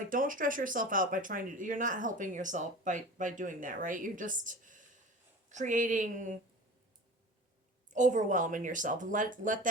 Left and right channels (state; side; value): normal; both; correlation 0.36